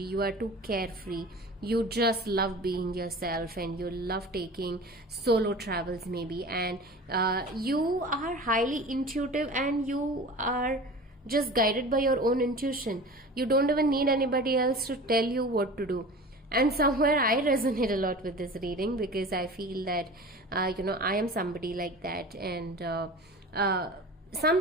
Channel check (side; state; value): both; normal; correlation 0.37